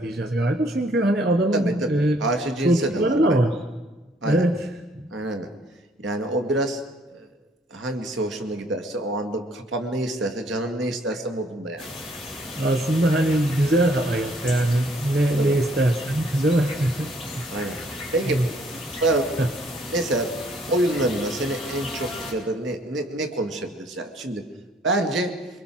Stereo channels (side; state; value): both; normal; correlation 0.63